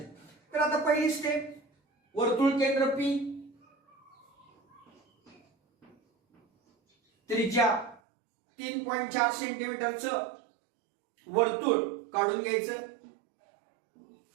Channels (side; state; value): left; drops out; at 8.0 s